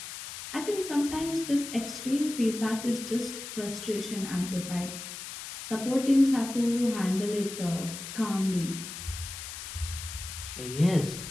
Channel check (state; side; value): noise; left; hiss, 9 dB below the sound